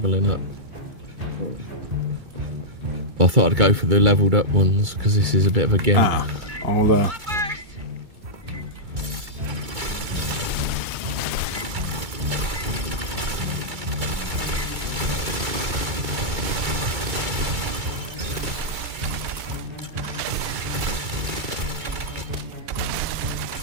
up. I thought I'd go for the leveled up ones because this is a bit of a gimp. I'll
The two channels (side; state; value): left; late; 2.3 ms